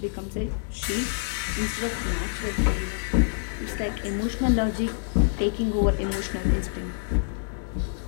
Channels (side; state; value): right; silent; digital silence